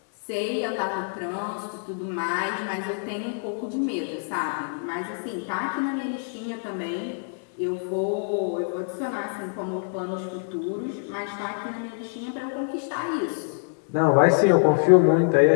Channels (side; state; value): right; silent; digital silence